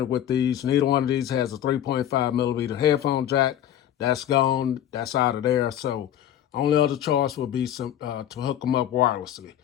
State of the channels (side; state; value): right; quieter; 11.1 dB